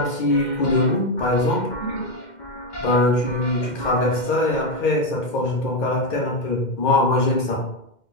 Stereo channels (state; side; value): late; right; 2.1 ms